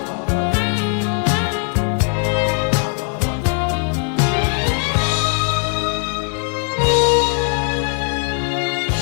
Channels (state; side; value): quieter; right; 38.2 dB